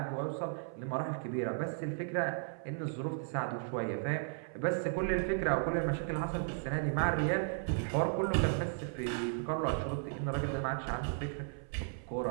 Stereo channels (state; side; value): silent; left; 54 dB below the other